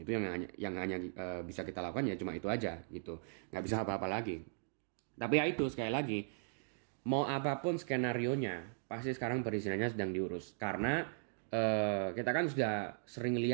Itu yang hanya bisa kita lakukan ya cuma itu aja gitu. Nggak bisa apa-apa lagi. Tapi ya itu sekali lagi, mau apapun skenarionya, pasti sekarang perizinannya sedang diurus. Karena kita kan sudah sering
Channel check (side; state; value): left; silent; digital silence